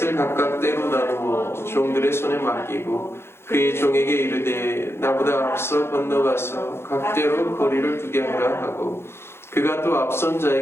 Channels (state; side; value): late; right; 0.12 ms